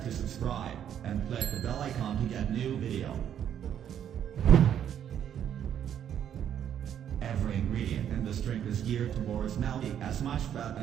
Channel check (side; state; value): left; quieter; 9.6 dB